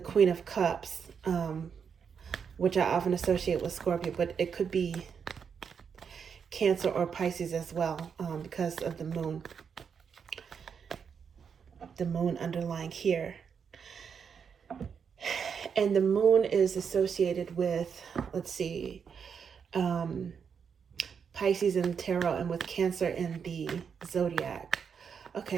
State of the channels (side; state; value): left; quieter; 6.7 dB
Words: Queen of Cups, which I often associate with Scorpio, but it could be Cancer or Pisces as well, because of the moon. The moon underlying here. And the moon is associated with, let's see, Pisces in the tarot, and with Cancer in the zodiac.